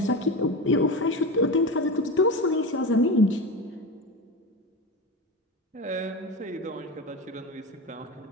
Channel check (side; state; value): both; normal; correlation 0.23